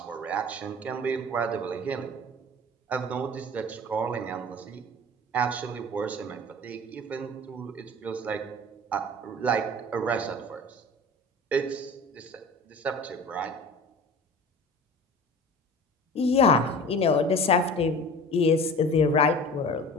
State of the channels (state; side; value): normal; both; correlation 0.40